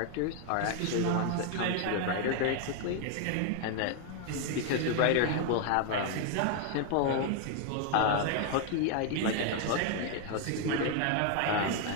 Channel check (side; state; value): both; different; correlation 0.00